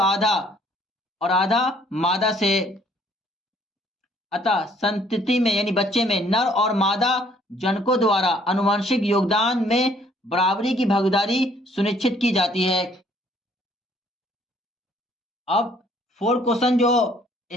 आधा मादा से। अतः संतति में यानी बच्चे में नर और मादा जनकों द्वारा अनुवांशिक योगदान में बराबरी की भागीदारी सुनिश्चित की जाती है। अब 4 क्वेश्चन जो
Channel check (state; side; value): normal; both; correlation 0.62